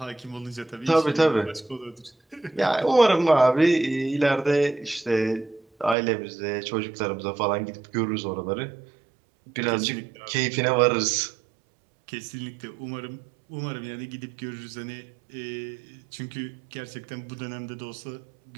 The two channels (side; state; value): left; drops out; at 6.0 s